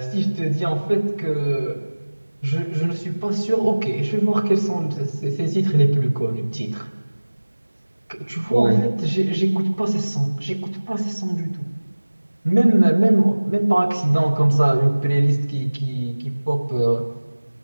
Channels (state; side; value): inverted; both; correlation -1.00